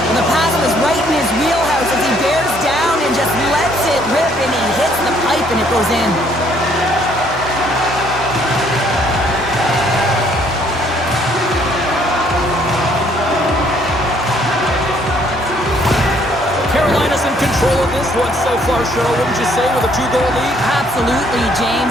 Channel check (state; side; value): normal; both; correlation 0.65